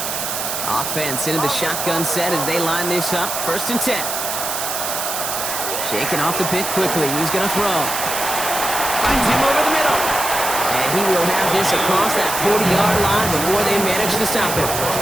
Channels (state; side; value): noise; right; hiss, 3 dB below the sound